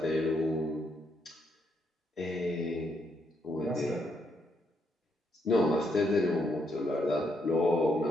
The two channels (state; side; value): normal; both; correlation 0.76